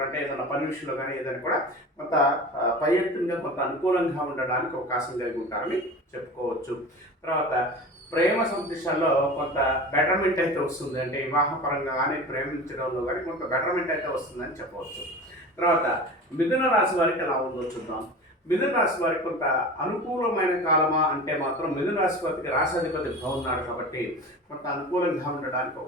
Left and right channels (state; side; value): normal; both; correlation 0.34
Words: అంటే ఏదైనా పని విషయంలో కానీ ఏదైనా కూడా కొంత పై ఎత్తుగా కొంత అనుకూలంగా ఉండడానికి అవకాశం కలిగి ఉంటారని చెప్పుకోవచ్చు. తర్వాత ప్రేమ సందేశాల్లో కొంత బెటర్మెంట్ అయితే వస్తుంది. అంటే వివాహపరంగా కానీ ప్రేమించడంలో కానీ కొంత బెటర్మెంట్ అయితే వస్తుందని చెప్పవచ్చు. తర్వాత మిథున రాశి వారికి ఎలా ఉందో చూద్దాం. మిథున రాశి వారికి కొంత అనుకూలమైన కాలమా అంటే మాత్రం మిథున రాశి వారికి రాశాధిపతి బాగున్నాడు కాబట్టి కొంత అనుకూలంగా ఉండడానికి